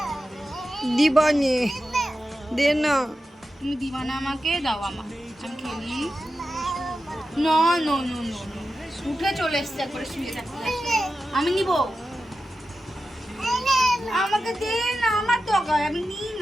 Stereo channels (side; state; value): both; normal; correlation 0.91